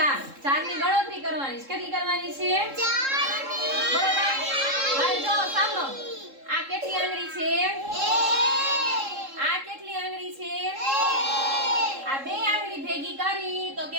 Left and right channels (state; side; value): late; left; 3.7 ms